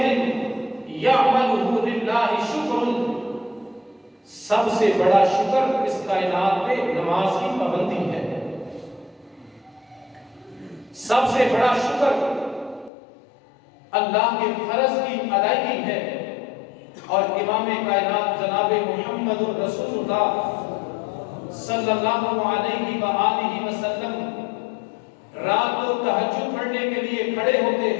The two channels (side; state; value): right; drops out; at 12.9 s